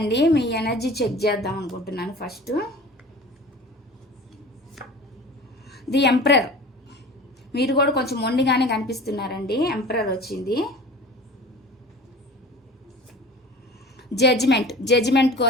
మీ ఎనర్జీ చెక్ చేద్దాం అనుకుంటున్నాను ఫస్ట్. ది ఎంపరర్, మీరు కూడా కొంచెం మొండిగానే కనిపిస్తున్నారండి. ఎంపరర్ వచ్చింది. జడ్జిమెంట్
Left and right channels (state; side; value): normal; both; correlation 0.40